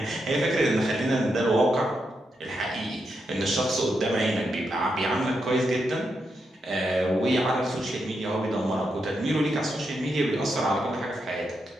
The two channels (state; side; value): normal; both; correlation 0.83